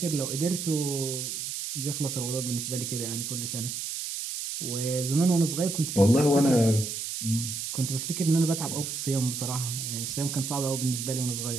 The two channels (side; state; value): right; noise; hiss, 4 dB below the sound